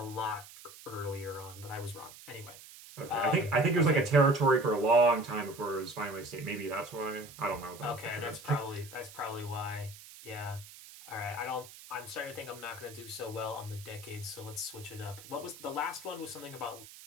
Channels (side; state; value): right; noise; hiss, 17 dB below the sound